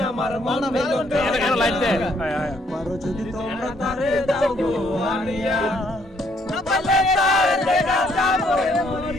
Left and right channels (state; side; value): normal; both; correlation 0.68